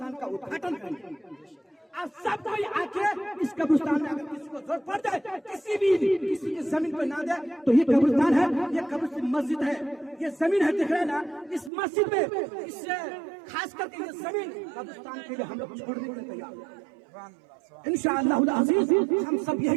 का उद्घाटन करेंगे। और सब कोई आके इस कब्रिस्तान में अगर किसी को जरूरत पड़ जाए, किसी की जमीन पर ना दे, तो ये कब्रिस्तान है, ये कब्रिस्तान मस्जिद है, ये जमीन है, दिख रहा है ना। इस मस्जिद में, इससे खास करके ये जमीन कब्रिस्तान के लिए हम लोग छोड़ने के लिए तैयार हैं। इंशाअल्लाह अज़ीज़ हम सब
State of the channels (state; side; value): drops out; left; at 11.7 s